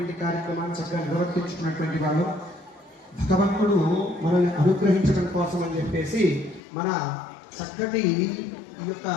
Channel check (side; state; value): right; drops out; at 6.6 s